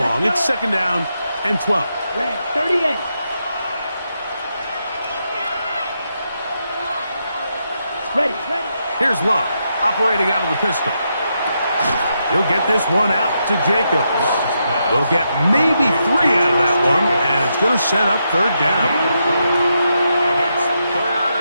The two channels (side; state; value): both; inverted; correlation -0.82